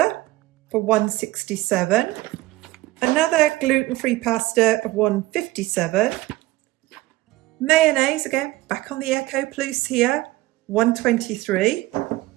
for £1.67. Another gluten-free pasta of £1.57. Mayonnaise, again, back on the Eco Plus here, £1.23.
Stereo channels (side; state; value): left; quieter; 18.4 dB